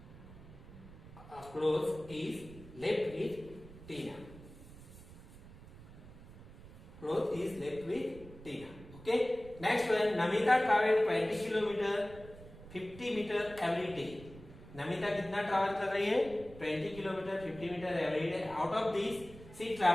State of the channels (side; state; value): right; noise; rumble, 17 dB below the sound